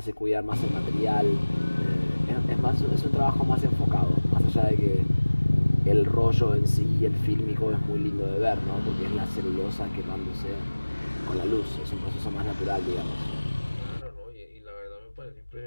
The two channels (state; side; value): inverted; both; correlation -1.00